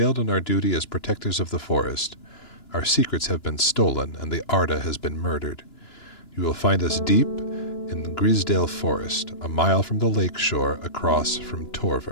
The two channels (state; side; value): late; right; 2.9 ms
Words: in our duty as protectors of the forest. Our secrets have been stolen, and the Arda has been murdered. You will find us deep in the Grisdale Forest, a mile from the lake shore across from